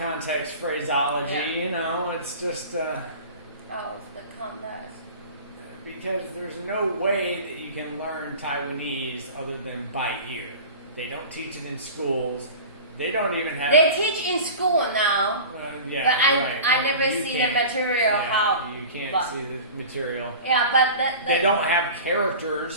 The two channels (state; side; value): inverted; both; correlation -0.37